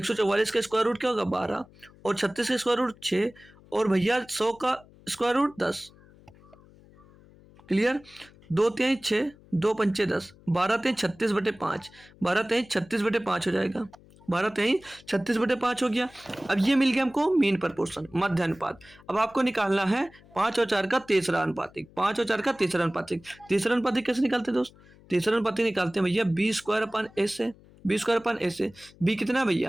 का स्क्वायर रूट क्या होगा 12, और 36 का स्क्वायर रूट 6, और भैया 100 का स्क्वायर रूट 10। क्लियर, 2 3 6, 2 पंचे 10, 12 3 36/5, 12 3 36/5 हो जाएगा, 12 3 36/5 हो गया। अब ये मिल गया हमको मीन प्रपोर्शन, मध्य अनुपात। अब आपको निकालना है 5 और 4 का तीसरा अनुपातिक, 5 और 4 का तीसरा अनुपातिक। तीसरा अनुपातिक कैसे निकालते हैं दोस्त, तीसरा अनुपातिक निकालते हैं भैया b² से, b² से। बी कितना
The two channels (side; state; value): left; noise; hum, 25 dB below the sound